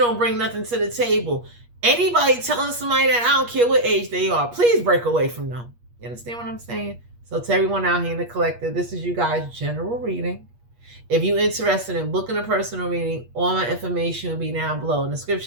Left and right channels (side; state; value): left; late; 8.4 ms